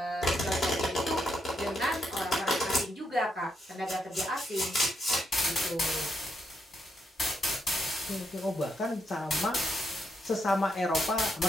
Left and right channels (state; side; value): normal; both; correlation 0.79